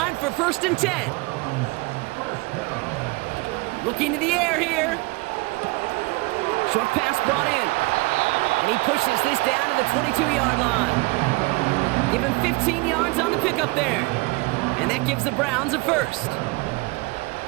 for 1st and 10. Looking to the air here. Short pass brought in. And he pushes this down to the 22-yard line. Give him 15 yards on the pickup there. And that gives the Browns a first.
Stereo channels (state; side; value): quieter; left; 25.6 dB